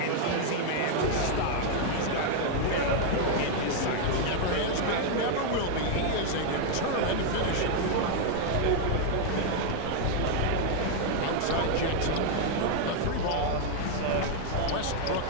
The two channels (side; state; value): both; different; correlation 0.00